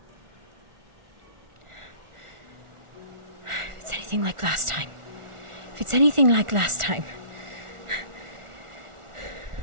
If it's anything like last time. If it's anything like last time.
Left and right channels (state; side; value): late; left; 1.4 ms